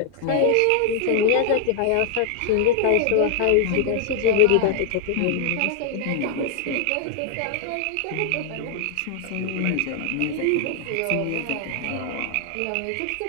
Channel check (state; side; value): different; both; correlation 0.00